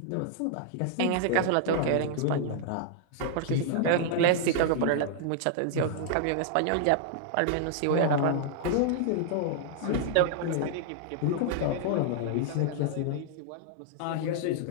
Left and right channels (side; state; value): both; different; correlation -0.01